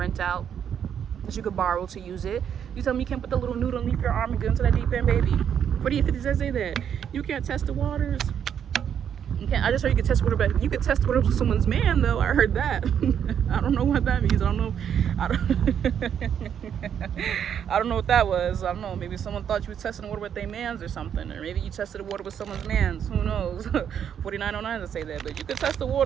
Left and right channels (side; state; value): left; quieter; 8.6 dB